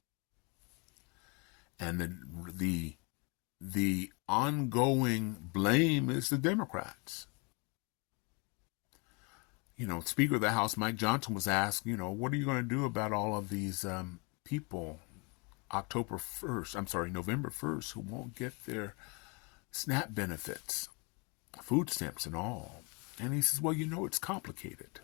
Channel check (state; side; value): quieter; right; 31.7 dB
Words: And the ongoing blame is the Democrats. Speaker of the House Mike Johnson was asked, what are you going to do about all of these people November 1st, who won't get their SNAP benefits, food stamps and all. And he says, well, it's complicated.